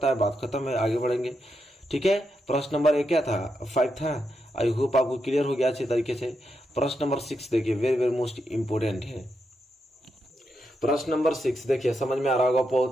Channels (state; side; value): normal; both; correlation 0.84